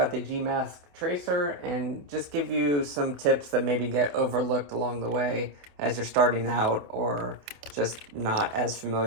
the Gmask Tracer and just give you some tips that maybe get overlooked along the way as you're starting out or just not as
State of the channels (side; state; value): left; late; 27 ms